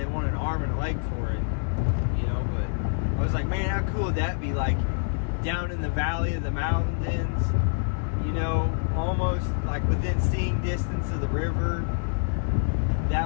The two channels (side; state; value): right; silent; digital silence